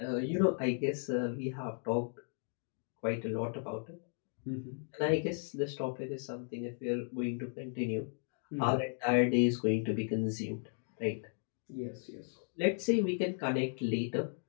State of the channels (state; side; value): silent; right; 54 dB below the other